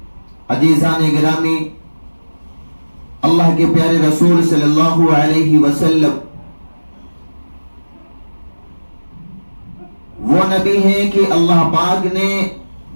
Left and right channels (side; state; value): both; inverted; correlation -1.00